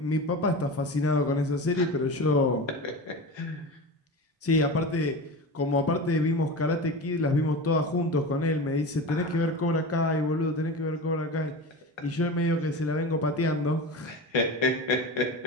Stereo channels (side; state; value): both; normal; correlation 0.28